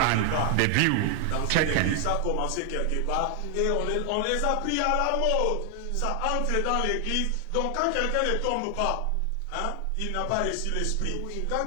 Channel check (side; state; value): both; different; correlation 0.00